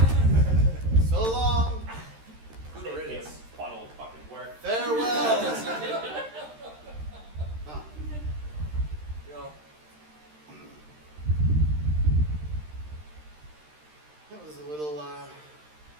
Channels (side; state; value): left; late; 13 ms